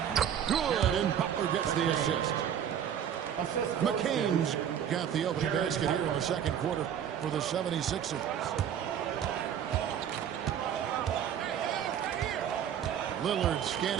Good, and Butler gets the assist. McCain's got the opening basket here in the second quarter for the 76ers. Lillard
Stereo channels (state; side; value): quieter; left; 9.2 dB